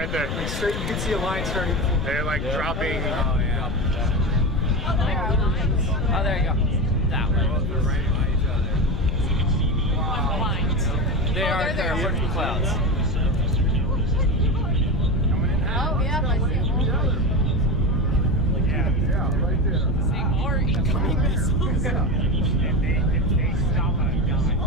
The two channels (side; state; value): left; noise; rumble, 3 dB below the sound